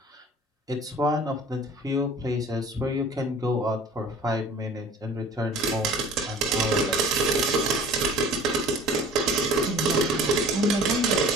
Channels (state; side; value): normal; both; correlation 0.45